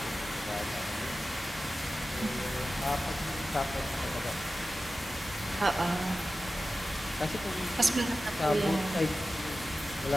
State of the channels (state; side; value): normal; both; correlation 0.94